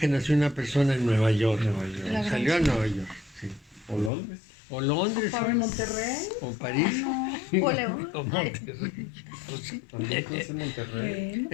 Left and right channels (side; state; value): right; drops out; at 4.1 s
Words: nació una persona en Nueva York? Salió a Nueva York. Sí. O Londres. O Londres. ¿O Monterrey? O París. O León. O Monterrey. Pues sí. También conoce Monterrey.